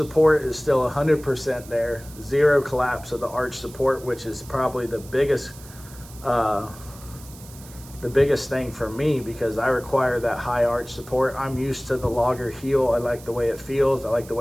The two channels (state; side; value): noise; right; hiss, 20 dB below the sound